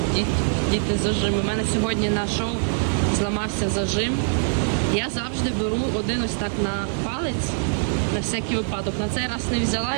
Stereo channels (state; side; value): silent; left; 63 dB below the other